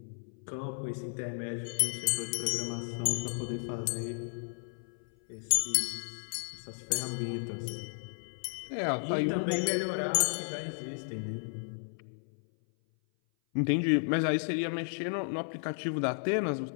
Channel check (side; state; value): right; silent; 55 dB below the other